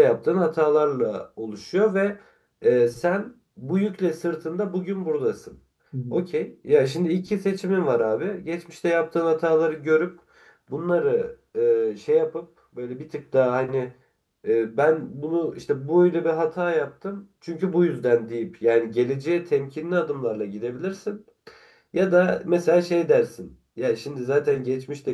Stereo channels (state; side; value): identical; both; correlation 1.00